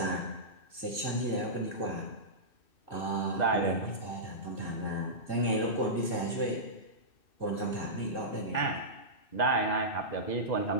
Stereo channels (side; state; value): right; late; 2.6 ms